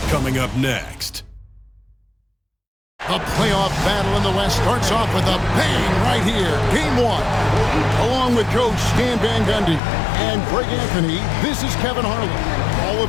coming up next. The playoff battle in the West starts off with a bang right here. Game one. Along with Coach Stan Van Gundy and Greg Anthony, this is Kevin Harlan. Hall of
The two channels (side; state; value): right; drops out; at 9.8 s